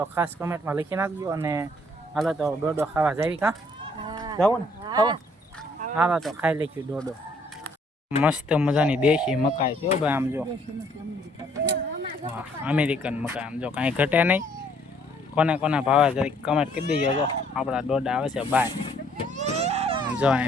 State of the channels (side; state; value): both; normal; correlation 0.64